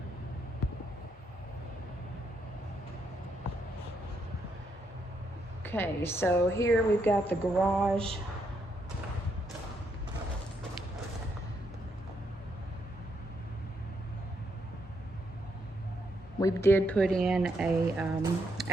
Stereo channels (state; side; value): normal; both; correlation 0.77